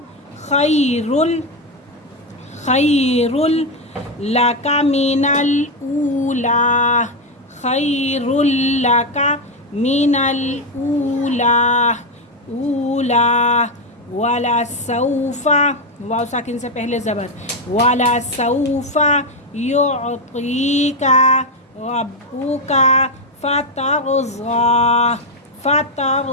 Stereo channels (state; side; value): normal; both; correlation 0.06